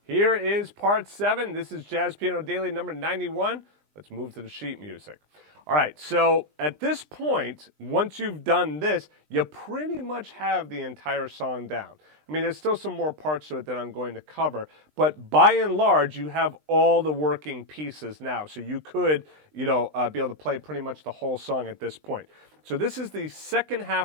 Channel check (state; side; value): late; left; 20 ms